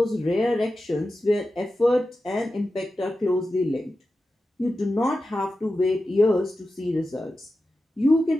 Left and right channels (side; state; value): both; normal; correlation 0.92